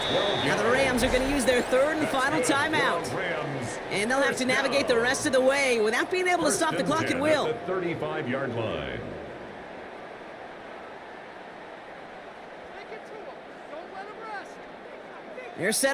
Now the Rams are going to use their 3rd and final timeout. And they'll have to navigate the rest of the way without being able to stop the clock at will. 35-yard line. They're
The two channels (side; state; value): both; identical; correlation 1.00